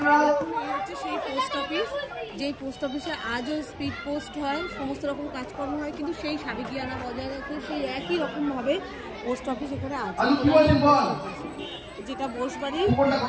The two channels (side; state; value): both; identical; correlation 1.00